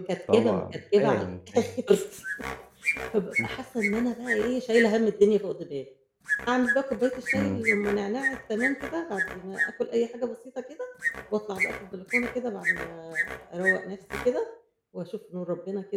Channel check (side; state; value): both; identical; correlation 1.00